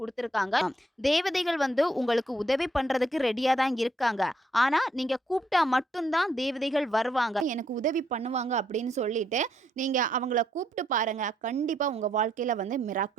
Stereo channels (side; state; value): both; normal; correlation 0.73